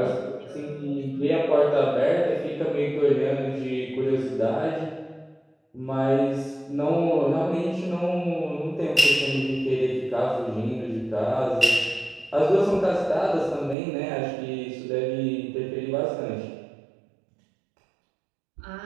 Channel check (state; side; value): drops out; left; at 13.8 s